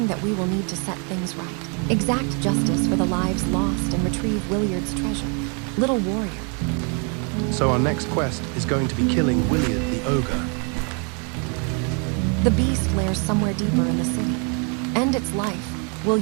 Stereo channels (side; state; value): left; quieter; 36.3 dB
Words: that we will need to set things right. Exact justice for the lives lost and retrieve Williard's treasure. Little warrior. So our next quest is going to be killing Williard the ogre. The beast lairs somewhere deeper in the city. End its life, will